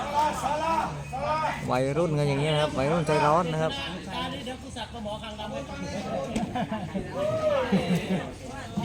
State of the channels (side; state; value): both; identical; correlation 1.00